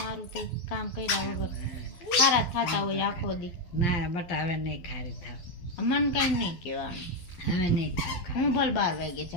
તે કામ કર્યા વગર ખારા થતા હોય આખો દી. ના બટા હવે નહીં ખારી થાવ, મન કઈ નહીં કહેવાનું. હવે નહીં ખાવ. હું ભલે 12 વાગે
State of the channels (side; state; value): right; late; 12 ms